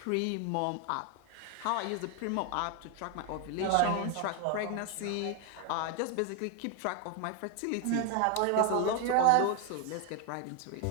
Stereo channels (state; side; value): different; both; correlation 0.01